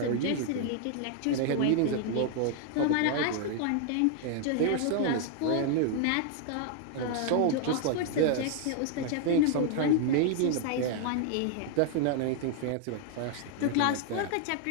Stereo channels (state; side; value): different; both; correlation 0.00